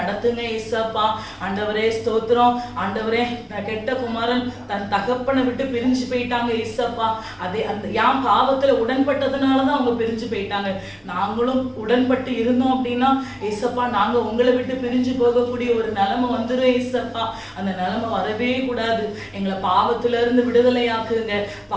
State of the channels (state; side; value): identical; both; correlation 1.00